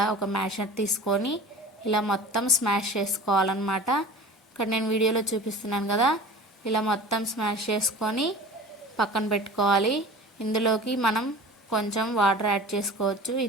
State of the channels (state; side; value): normal; both; correlation 0.39